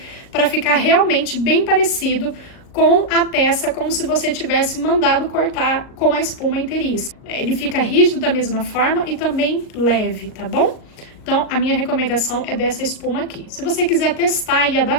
para ficar realmente bem parecido com a peça, como se você tivesse mandado cortar com a espuma inteiriça. Ele fica rígido da mesma forma e também leve, tá bom? Então, a minha recomendação é dessa espuma aqui. Se você quiser testar e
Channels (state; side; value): late; right; 38 ms